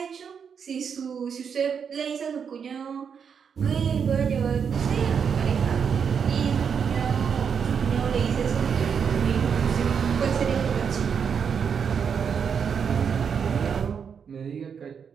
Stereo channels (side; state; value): left; quieter; 6.9 dB